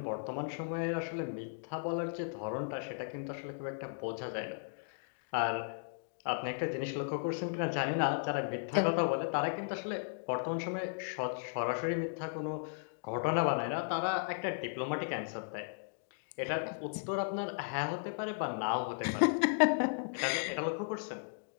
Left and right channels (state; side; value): silent; right; digital silence